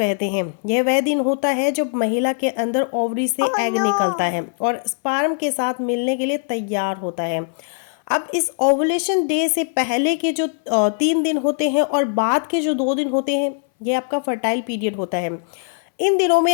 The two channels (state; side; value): silent; right; 62 dB below the other